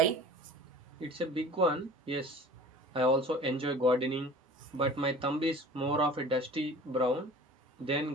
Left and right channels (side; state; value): both; normal; correlation 0.43